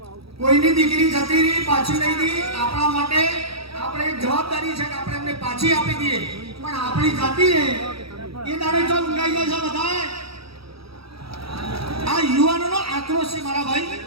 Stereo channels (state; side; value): late; left; 0.76 ms